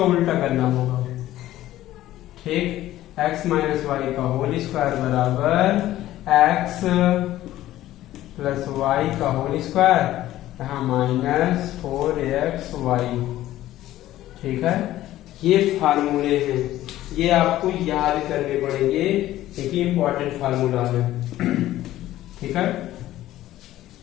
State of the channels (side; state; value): right; quieter; 14.4 dB